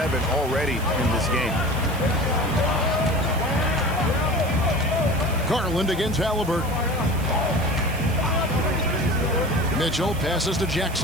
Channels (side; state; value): right; noise; hiss, 16 dB below the sound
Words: already in this game. Garland against Halliburton. Mitchell passes to